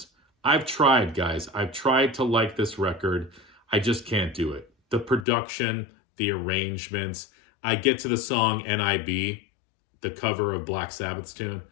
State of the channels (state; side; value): drops out; right; at 5.2 s